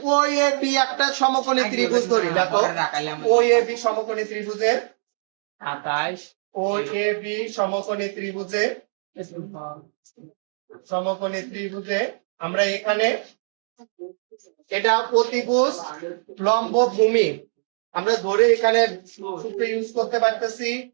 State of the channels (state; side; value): silent; left; digital silence